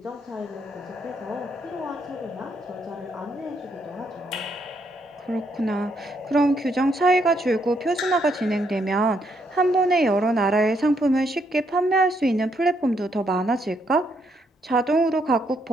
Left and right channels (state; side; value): normal; both; correlation 0.74